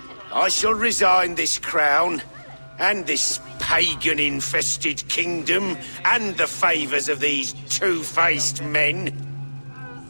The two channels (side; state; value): both; inverted; correlation -1.00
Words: I shall resign this crown, and this pagan-infested kingdom, and the favours of these two-faced men.